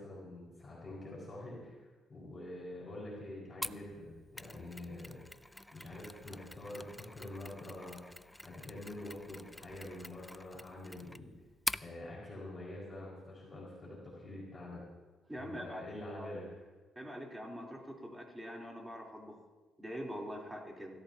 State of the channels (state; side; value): normal; both; correlation 0.87